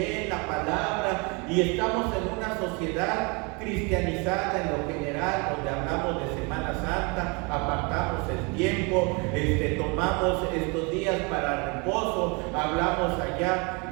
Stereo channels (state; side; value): quieter; left; 30.6 dB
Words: la palabra y estamos en una sociedad cristianizada en lo general, donde hablamos de Semana Santa, apartamos el tiempo, tomamos estos días para reposo, hablamos allá